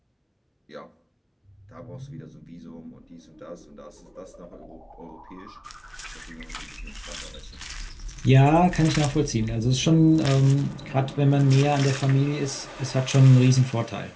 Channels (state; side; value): identical; both; correlation 1.00